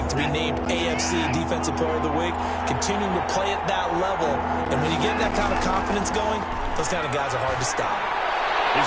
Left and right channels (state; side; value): identical; both; correlation 1.00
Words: to be named AFC Defensive Player of the Week, continuing to play at that level. And when you get that kind of confidence going, those kind of guys are hard to stop. He's